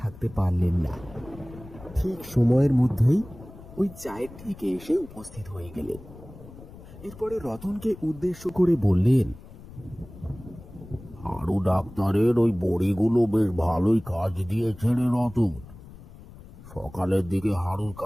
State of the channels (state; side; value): noise; left; rumble, 18 dB below the sound